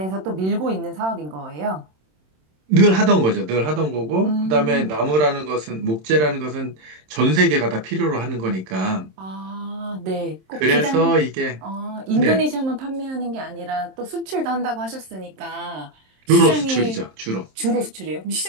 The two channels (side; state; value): left; late; 27 ms